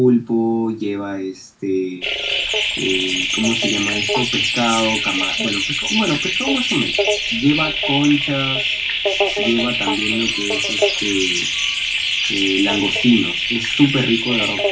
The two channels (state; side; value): identical; both; correlation 1.00